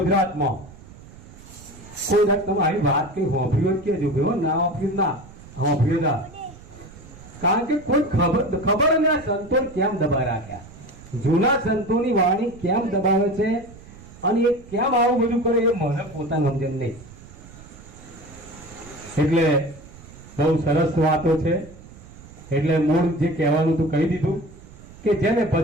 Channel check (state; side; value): noise; right; rumble, 19 dB below the sound